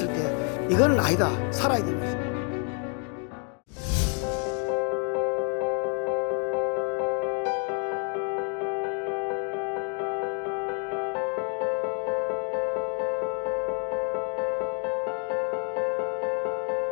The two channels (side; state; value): right; quieter; 39.8 dB